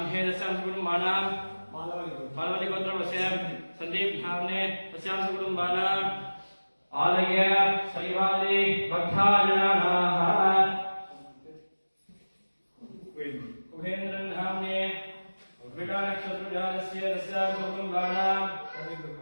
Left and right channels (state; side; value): inverted; both; correlation -1.00